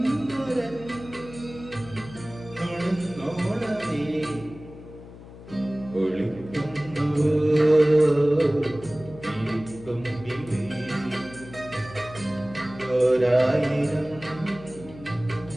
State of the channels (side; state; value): left; noise; hum, 17 dB below the sound